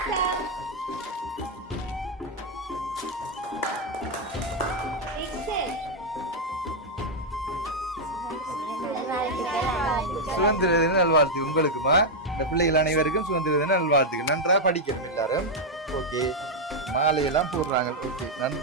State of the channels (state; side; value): normal; both; correlation -0.01